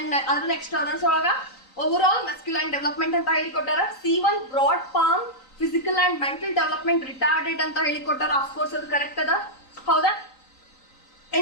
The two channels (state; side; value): late; right; 3.9 ms